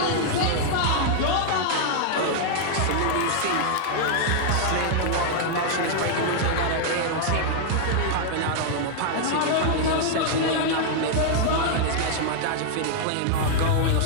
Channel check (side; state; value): both; different; correlation -0.01